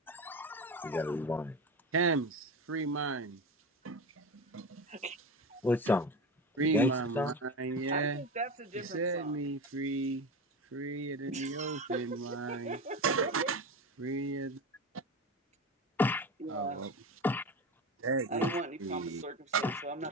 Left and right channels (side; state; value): both; normal; correlation 0.25